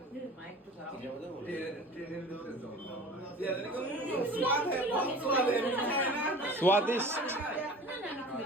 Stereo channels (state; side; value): normal; both; correlation 0.40